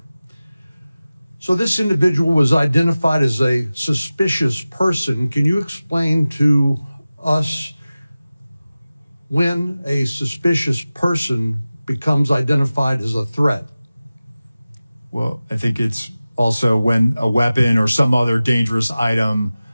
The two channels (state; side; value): inverted; both; correlation -0.96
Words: So this individual was identified as a suspicious person. Can you explain to us when a suspicious person becomes identified as a threat? Well, I think it's also when a weapon or some other dangerous item